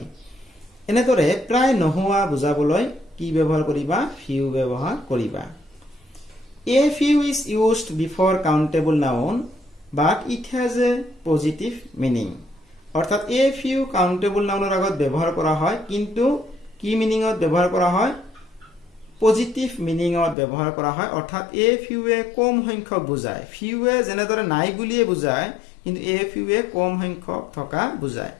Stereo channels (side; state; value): right; drops out; at 20.4 s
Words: এনেদৰে প্ৰায় নোহোৱা বুজাবলৈ কি ব্যৱহাৰ কৰিবা ফিউ ব্যৱহাৰ কৰিবা। A few is used before countable noun but it has a positive meaning. অৰ্থাৎ a few countable nounৰ আগত ব্যৱহাৰ কৰা হয় কিন্তু কি মিনিংত ব্যৱহাৰ কৰা হয় পজিটিভ মিনিংত ব্যৱহাৰ কৰা হয়। অৰ্থাৎ a fewৱে কম সংখ্যক বুজায়। ফিউৱে যেনেদৰে নাই বুলিয়ে বুজায় কিন্তু a fewৱে কম সংখ্যক থকা বুজায়।